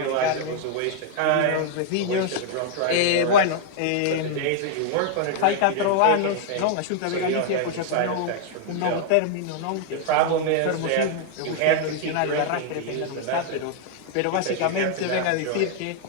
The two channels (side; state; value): both; different; correlation 0.00